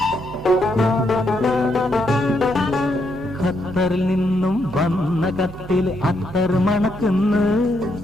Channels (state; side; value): normal; both; correlation 0.77